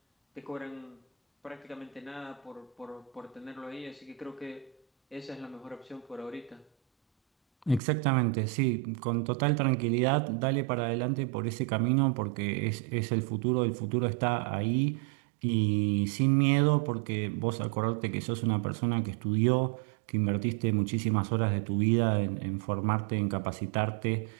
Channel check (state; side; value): drops out; left; at 7.8 s